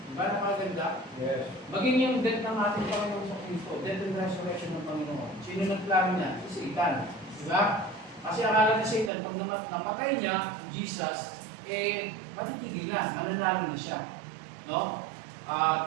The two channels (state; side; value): drops out; left; at 9.1 s